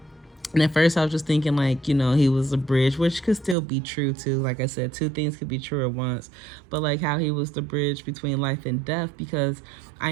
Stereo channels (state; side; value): drops out; left; at 3.6 s